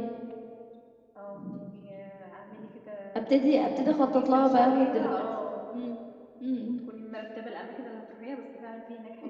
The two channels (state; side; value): identical; both; correlation 1.00